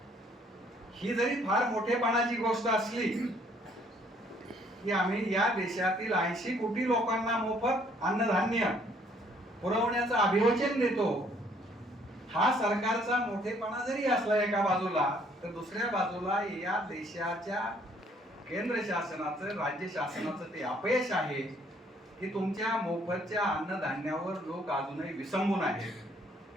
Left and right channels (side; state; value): both; normal; correlation 0.63